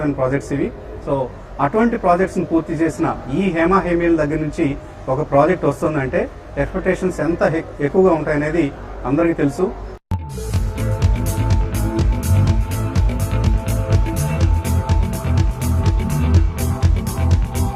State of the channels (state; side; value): identical; both; correlation 1.00